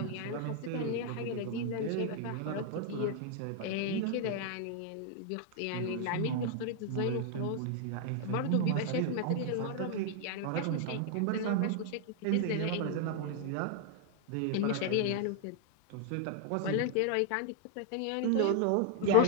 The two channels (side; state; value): both; different; correlation 0.00